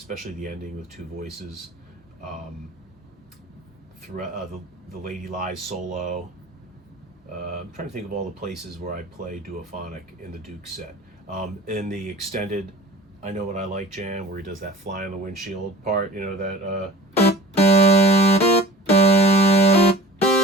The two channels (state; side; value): normal; both; correlation 0.41